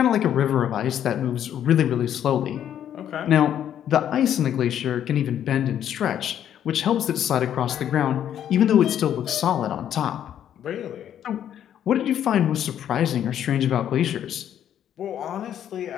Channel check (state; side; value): quieter; right; 10.1 dB